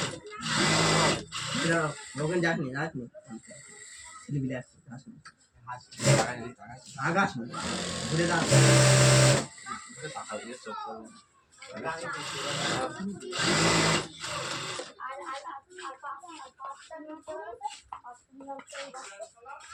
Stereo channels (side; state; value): both; identical; correlation 1.00